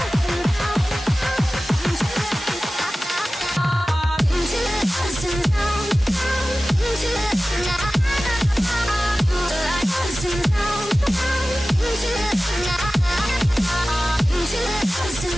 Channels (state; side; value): normal; both; correlation 0.96